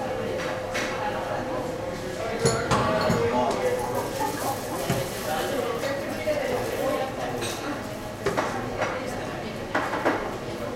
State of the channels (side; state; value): both; identical; correlation 1.00